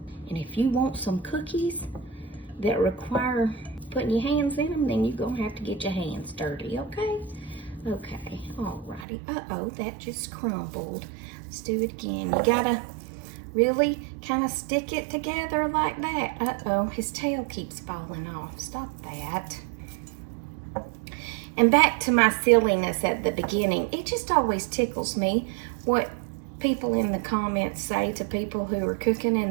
And if you want some cookies that require putting your hands in them, then you're gonna have to get your hands dirty, okay? Okay, alrighty. Uh-oh, that just crumbled. Let's do it again. You gotta really kind of stick it together like that. Uh-oh, his tail keeps falling off. Stop that. And back to my silliness at the beginning, it just always tickles me what people in the comments say to people who are cooking in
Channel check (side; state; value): left; drops out; at 9.1 s